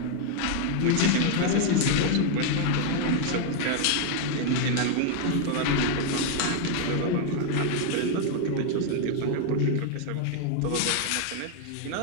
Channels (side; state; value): both; different; correlation 0.00